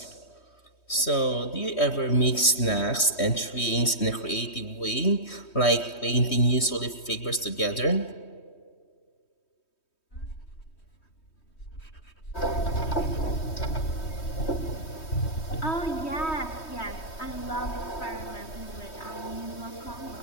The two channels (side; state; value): right; late; 3.2 ms